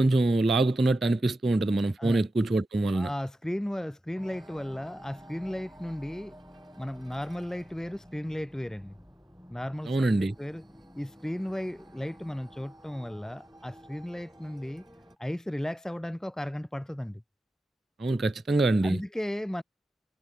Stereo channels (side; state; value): both; normal; correlation 0.92